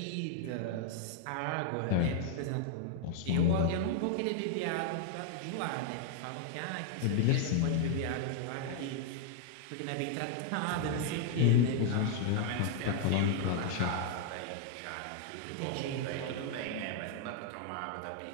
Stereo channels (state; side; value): different; both; correlation -0.01